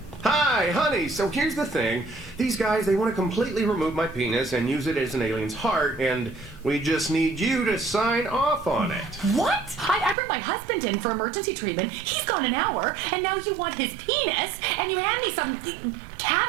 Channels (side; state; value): left; drops out; at 10.2 s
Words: Hi, honey. So here's the thing. These guys, they want to completely remove my penis and use it as an alien's heart, and we just need you to sign off on it. What? I brought my husband in for emergency treatment. He's gone an hour, and now you want his penis, and you hand me some